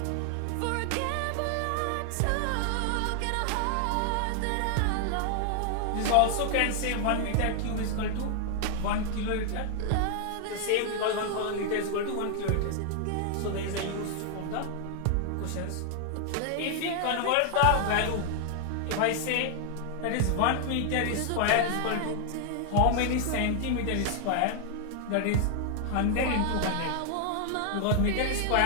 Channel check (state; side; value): different; both; correlation 0.00